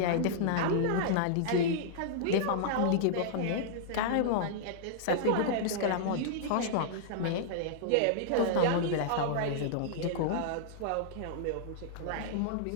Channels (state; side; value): different; both; correlation -0.02